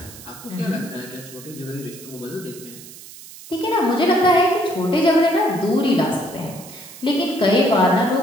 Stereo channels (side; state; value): right; noise; hiss, 17 dB below the sound